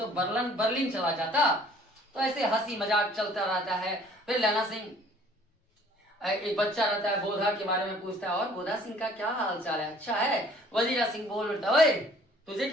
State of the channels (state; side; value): normal; both; correlation 0.55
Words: बर्लिन चला जाता। तो ऐसे हंसी मजाक चलता रहता है। फिर लहना सिंह एक बच्चा रहता है बोधा के बारे में पूछता है, और बोधा सिंह का क्या हाल चाल है? अच्छा है। वजीरा सिंह बोल उठता है तुझे